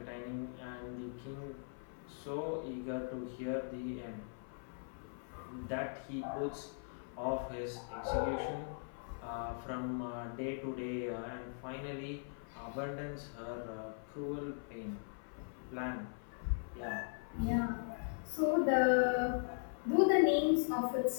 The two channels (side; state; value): right; silent; 51 dB below the other